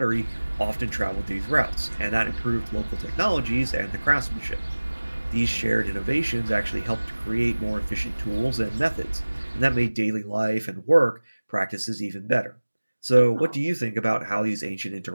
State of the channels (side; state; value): both; inverted; correlation -1.00